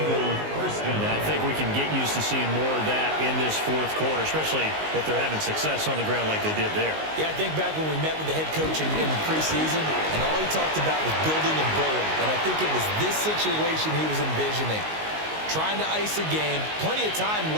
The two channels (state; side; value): late; left; 19 ms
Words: first down. I think we can get used to seeing more of that in this 4th quarter, especially if they're having success on the ground like they did there. Yeah, I think back when we met with the head coach in preseason, and all he talked about was building a bullet. And I think it was this situation he was envisioning. Trying to ice a game, plenty of time